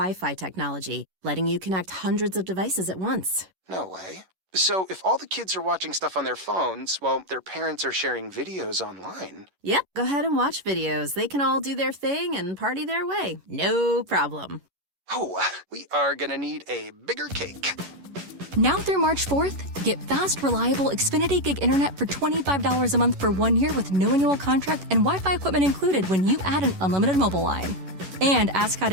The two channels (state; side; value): late; left; 11 ms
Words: technology, letting you connect hundreds of devices at once. No way. So if all the kids are watching stuff on their phones, well, their parents are sharing videos online. Yep, go ahead and watch videos. They can all do their thing and party their way. No problem. Oh, we are gonna need a bigger cake. Now through March 4th, get fast, reliable Xfinity Gig Internet for $25 a month for 1 year with no annual contract and Wi-Fi equipment included when you add an unlimited mobile line. And ask how